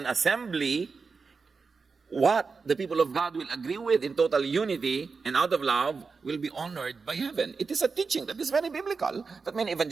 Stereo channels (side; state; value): left; quieter; 4.8 dB